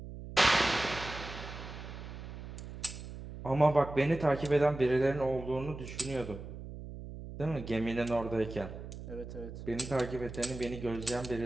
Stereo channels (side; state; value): right; noise; hum, 11 dB below the sound